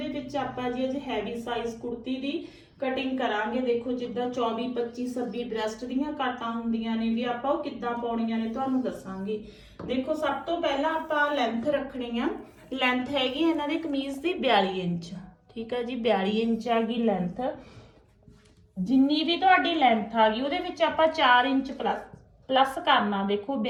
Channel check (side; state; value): both; identical; correlation 1.00